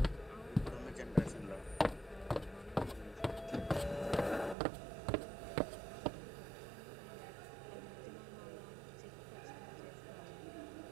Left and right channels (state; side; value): drops out; left; at 4.5 s